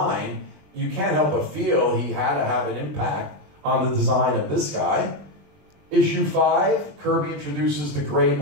you can't help but feel he had to have an impact on the design of this guy. Issue 5, Kirby introduces the great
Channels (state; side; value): late; left; 21 ms